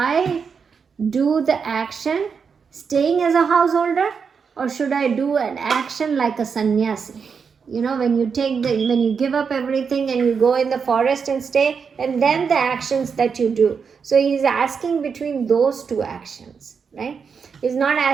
do the action staying as a householder, or should I do an action like a sannyasi? When you give up everything and you go in the forest and stay, and then the actions that you do. So he's asking between those 2 actions, right? He's not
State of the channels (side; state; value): left; quieter; 6.0 dB